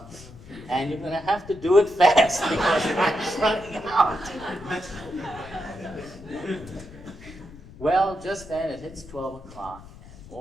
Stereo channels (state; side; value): noise; left; rumble, 18 dB below the sound